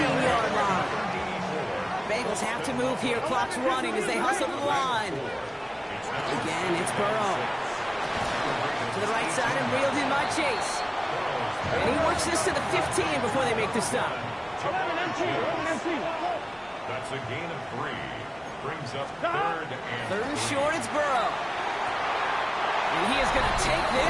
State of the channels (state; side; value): identical; both; correlation 1.00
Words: line. Bengals have to move here. Clock's running as they hustle to the line. Again, it's Burrow. To the right side and reeled in by Chase. And he works this to the 15 before they make the stop. 11 empty. That's a gain of 3. Brings up 3rd and Third and short, it's Burrow. And he is going to take